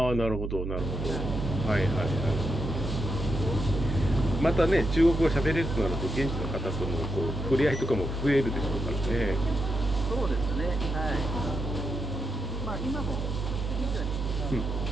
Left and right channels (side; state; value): right; noise; hum, 3 dB below the sound